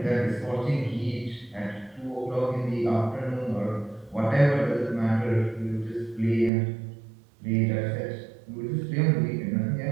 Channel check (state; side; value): drops out; left; at 6.5 s